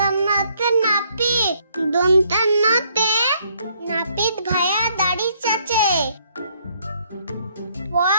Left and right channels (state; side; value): inverted; both; correlation -0.68